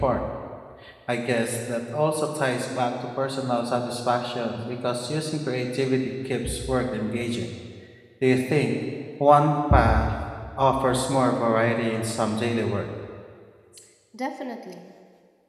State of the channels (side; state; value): both; identical; correlation 1.00